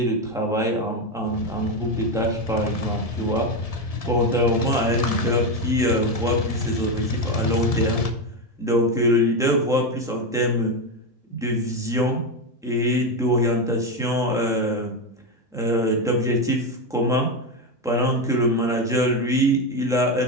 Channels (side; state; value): both; normal; correlation 0.11